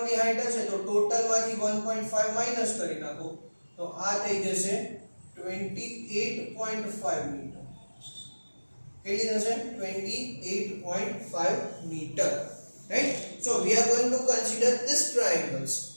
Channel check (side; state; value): both; inverted; correlation -1.00